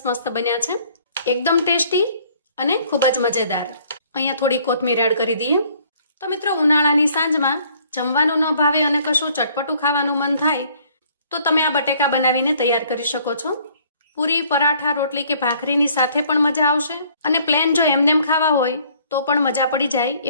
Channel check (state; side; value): inverted; both; correlation -0.60